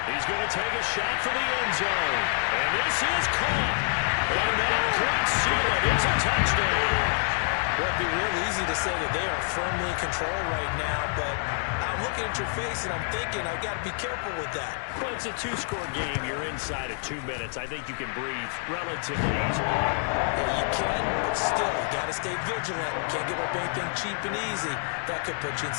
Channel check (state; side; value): silent; right; 55 dB below the other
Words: He's going to take a shot for the end zone. And this is caught. And that could seal it. It's a touchdown. Well, it'd be real easy to say that they are firmly in control right now, but I'm looking at your face and I'm thinking I've got to be careful with that. Well, it's a 2-score game. You're inside of 2 minutes. I think you can breathe relatively easily. Yeah, you can, but still, you got to stay vigilant. Can't give up anything cheap and easy. That could put you in